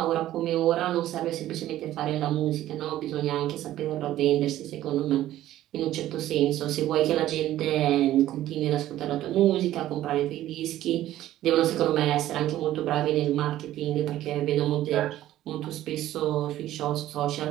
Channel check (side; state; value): left; quieter; 13.8 dB